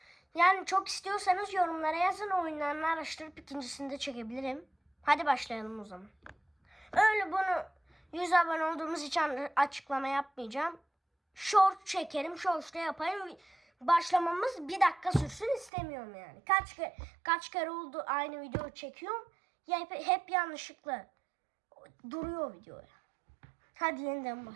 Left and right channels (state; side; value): drops out; left; at 15.7 s